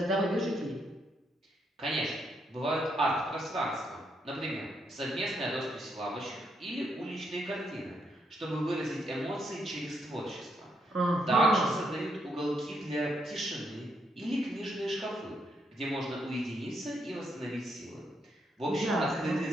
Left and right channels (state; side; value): normal; both; correlation 0.77